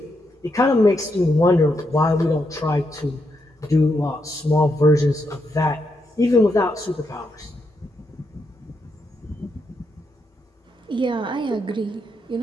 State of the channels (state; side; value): normal; both; correlation 0.81